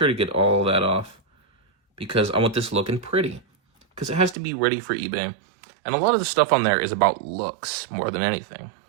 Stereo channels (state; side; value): drops out; left; at 4.4 s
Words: to get all that off because I want this looking pretty. Because it has to be ready for eBay. And a lot of the stuff on there is about looks more than anything.